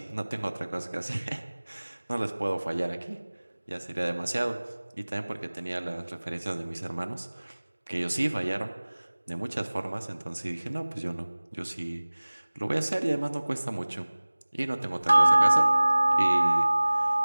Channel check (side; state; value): both; inverted; correlation -1.00